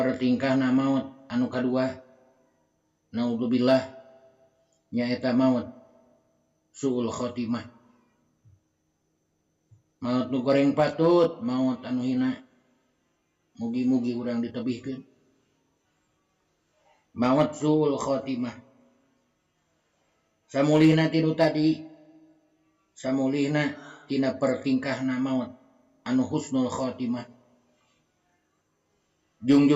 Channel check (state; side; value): identical; both; correlation 1.00